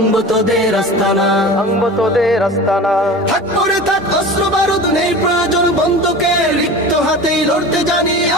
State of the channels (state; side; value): normal; both; correlation 0.35